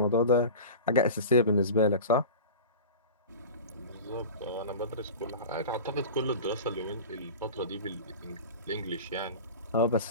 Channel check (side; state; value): both; inverted; correlation -0.33